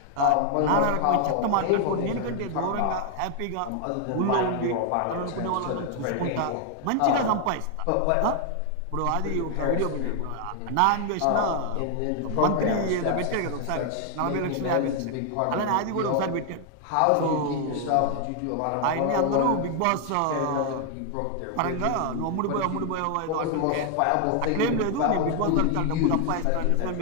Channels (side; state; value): both; different; correlation 0.00